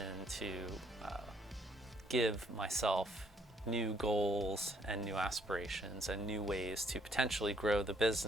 to give myself new goals and new aspirations and new ways to potentially grow the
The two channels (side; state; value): both; normal; correlation 0.69